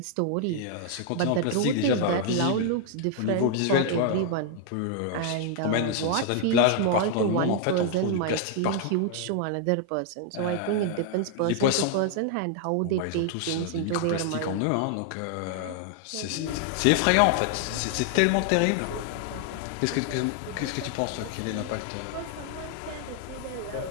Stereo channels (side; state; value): both; different; correlation 0.00